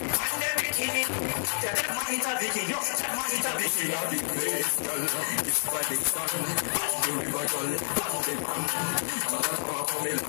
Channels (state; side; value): silent; right; digital silence